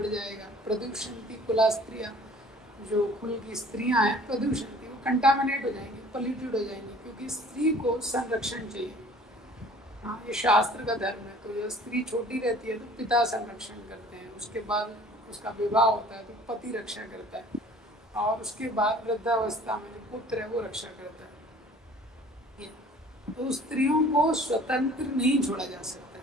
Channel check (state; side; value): normal; both; correlation 0.50